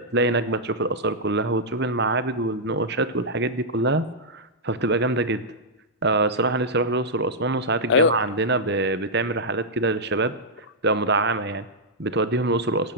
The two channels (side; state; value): both; normal; correlation -0.07